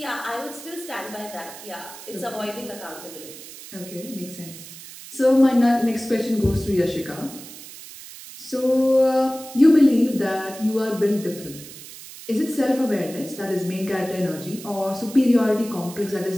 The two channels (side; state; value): right; noise; hiss, 15 dB below the sound